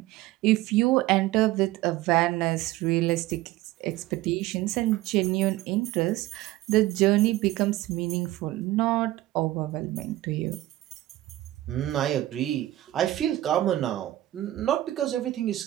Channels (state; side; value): quieter; left; 15.9 dB